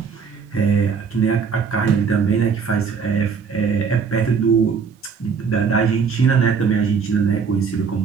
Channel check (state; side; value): quieter; left; 5.9 dB